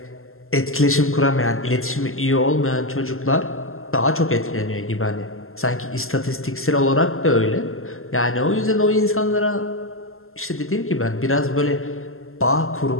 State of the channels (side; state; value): right; late; 0.62 ms